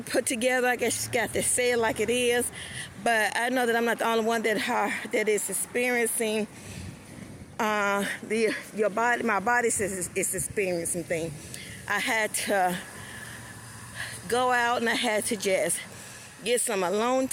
put together. I guess you got to say it like it is. But I know that I'm not the only one that is experiencing your body. My body is experiencing things. I had to go out and I had to just get some alone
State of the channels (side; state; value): both; identical; correlation 1.00